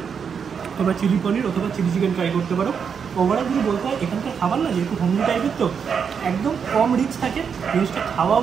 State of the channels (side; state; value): left; quieter; 6.7 dB